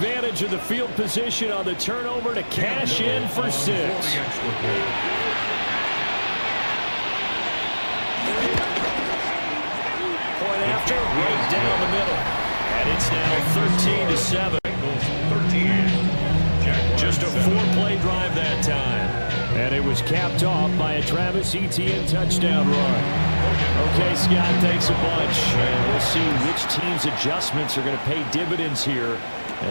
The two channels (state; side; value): inverted; both; correlation -1.00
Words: of the field position on the turnover to cash in for 6. Point after, right down the middle. And it's now 13-7. Just a 4-play drive that time. And it was capped off by a Travis Etienne touchdown run. Okay, Scott, thanks a bunch. And we'll see which team's adjustments are going to pay dividends here